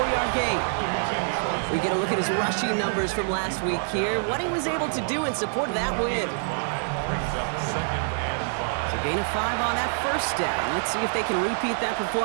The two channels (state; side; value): silent; left; digital silence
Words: gain. We get a look at his rushing numbers from last week here, what he was able to do in support of that win. So gain of 5 on that first down. Let's see if they can repeat that